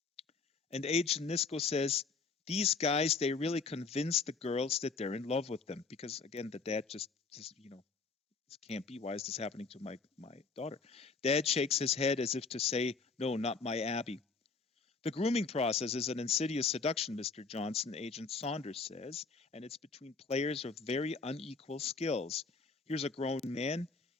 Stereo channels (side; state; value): right; quieter; 4.5 dB